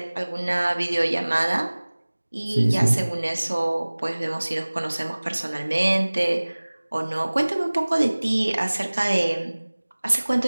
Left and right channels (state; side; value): inverted; both; correlation -1.00